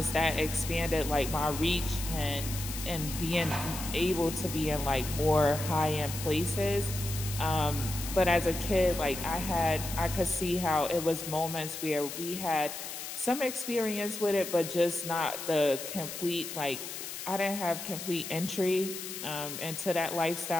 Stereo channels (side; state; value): left; noise; hiss, 8 dB below the sound